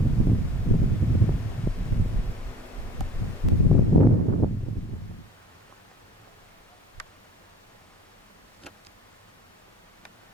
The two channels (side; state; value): both; normal; correlation 0.44